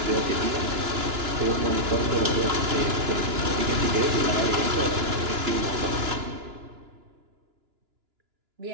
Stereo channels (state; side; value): late; left; 2.9 ms